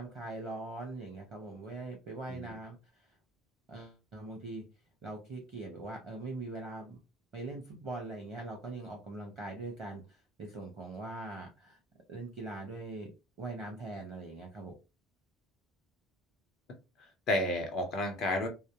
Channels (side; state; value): both; normal; correlation 0.45